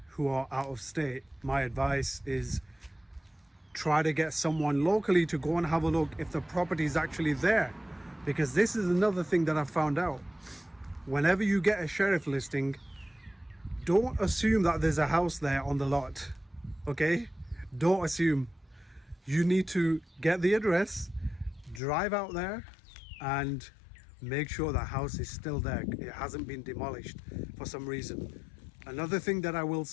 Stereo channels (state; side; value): drops out; right; at 21.8 s